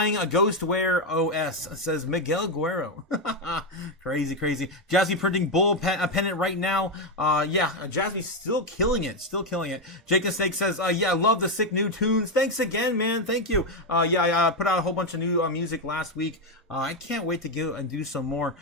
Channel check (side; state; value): both; normal; correlation 0.06